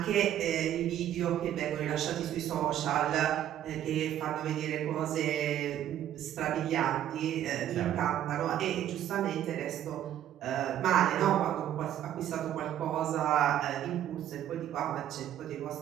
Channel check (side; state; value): left; quieter; 11.4 dB